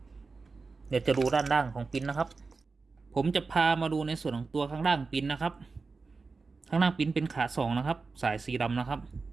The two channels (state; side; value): quieter; left; 4.2 dB